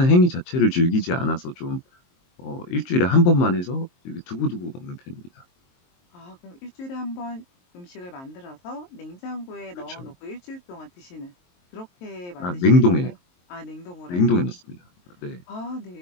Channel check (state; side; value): late; right; 23 ms